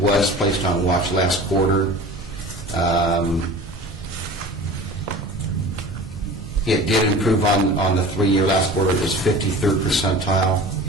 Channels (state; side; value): normal; both; correlation 0.39